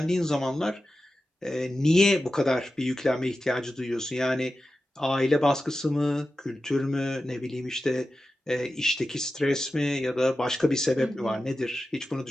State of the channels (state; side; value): normal; both; correlation 0.93